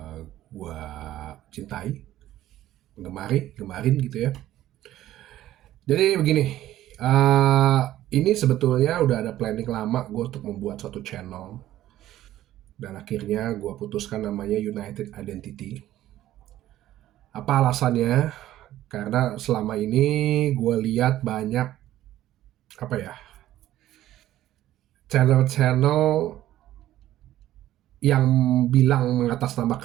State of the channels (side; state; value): left; quieter; 13.7 dB